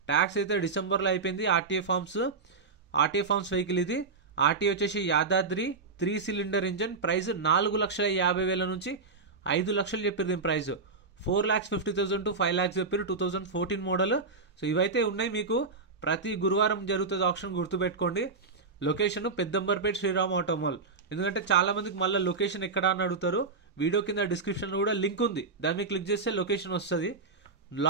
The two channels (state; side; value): quieter; left; 4.3 dB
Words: Tax అయితే డిసెంబర్లో అయిపోయింది. RTA forms vehicle. ఇది ఆర్టీఏ వచ్చేసి యాదాద్రి 3 cylinder ఇంజన్. ప్రైస్ 4,50,000 నుంచి 5 లక్షలు చెప్పారు దీని ప్రైస్. 4,50,000 to 5 lakhs చెప్పారు. 2014 మోడల్. సో ఇవైతే ఉన్నాయి. మీకు ప్రతి గురువారం జరుగుతుంది ఆప్షన్, గుర్తుపెట్టుకోండి. Location Peddamberpet Sriram auto mall. ఎందుకంటే చాలా మందికి మళ్ళీ లొకేషన్ ఎక్కడ అని అడుగుతారు. వీడియో కింద డిస్క్రిప్షన్లో కూడా లింక్ ఉంది, దాన్ని మీరు క్లిక్ చేస్తే లొకేషన్ వస్తుంది.